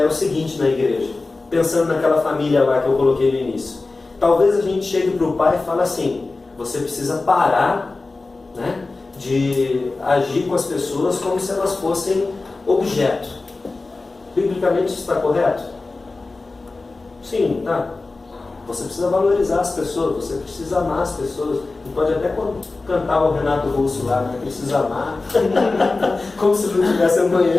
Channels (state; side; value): quieter; right; 3.5 dB